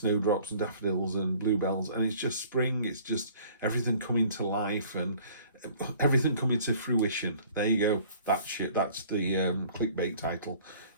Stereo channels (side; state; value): both; inverted; correlation -0.52